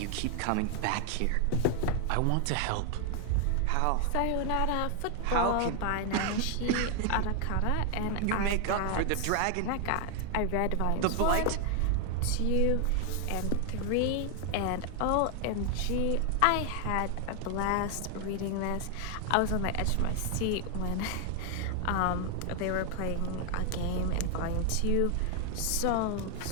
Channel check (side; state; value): both; different; correlation 0.00